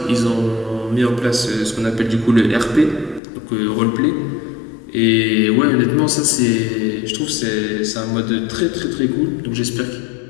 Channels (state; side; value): drops out; right; at 3.2 s